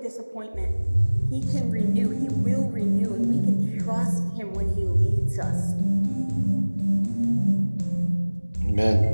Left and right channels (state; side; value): inverted; both; correlation -1.00